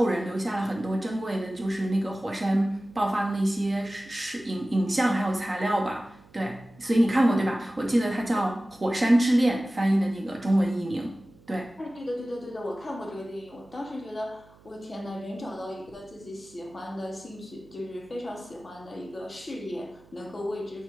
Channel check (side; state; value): right; noise; hum, 26 dB below the sound